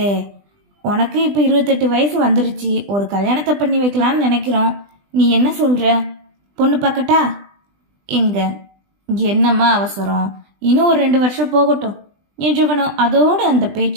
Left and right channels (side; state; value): left; late; 20 ms